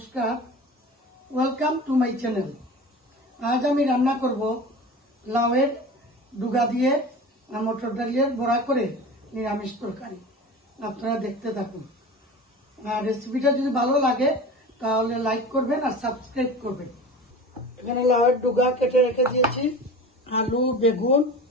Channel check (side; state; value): both; normal; correlation 0.34